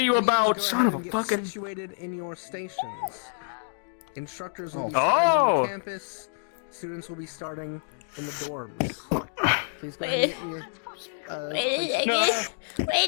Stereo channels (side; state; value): right; silent; digital silence